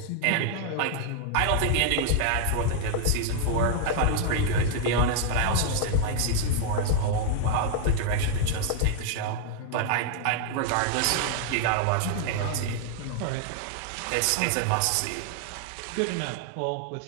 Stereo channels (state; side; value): different; both; correlation 0.00